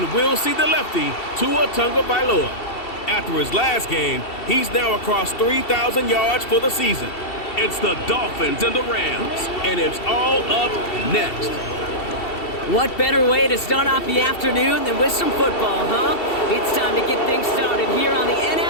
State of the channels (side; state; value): right; late; 2.7 ms